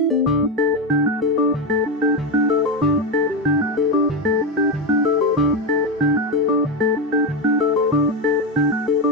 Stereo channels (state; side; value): normal; both; correlation 0.12